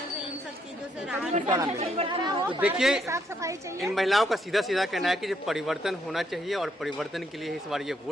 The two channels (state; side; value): normal; both; correlation 0.73